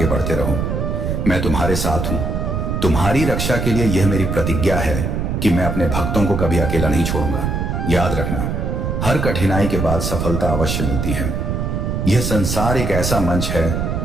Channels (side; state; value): right; noise; rumble, 1 dB below the sound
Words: बढ़ते रहो। मैं तुम्हारे साथ हूं। तुम्हारी रक्षा के लिए यह मेरी प्रतिज्ञा है कि मैं अपने भक्तों को कभी अकेला नहीं छोड़ूंगा। याद रखना, हर कठिनाई के बाद सफलता अवश्य मिलती है। यह संसार एक ऐसा मंच है